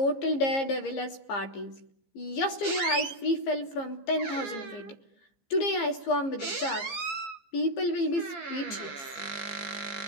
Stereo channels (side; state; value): right; late; 15 ms